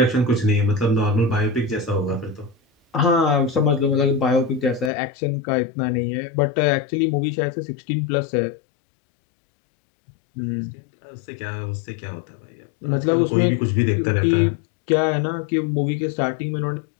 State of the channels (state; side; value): drops out; right; at 4.9 s